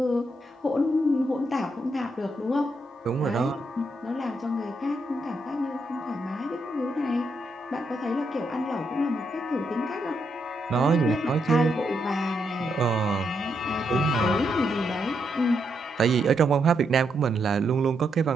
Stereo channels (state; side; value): normal; both; correlation 0.80